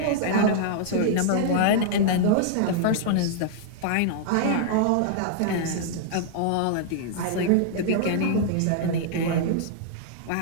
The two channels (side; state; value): both; different; correlation -0.01